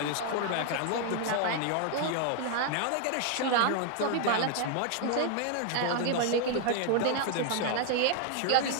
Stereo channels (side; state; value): both; different; correlation 0.00